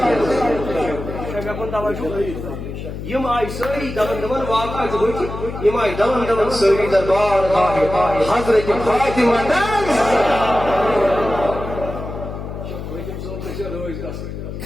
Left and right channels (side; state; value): left; noise; hum, 8 dB below the sound